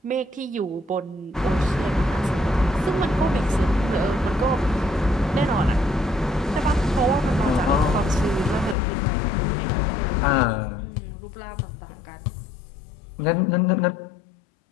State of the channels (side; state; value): right; drops out; at 8.8 s